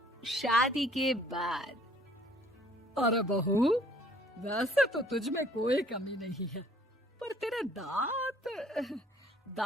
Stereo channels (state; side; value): normal; both; correlation 0.59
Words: शादी के बाद। अरे बहू, वैसे तो तुझ में कोई कमी नहीं है, पर तेरे दांत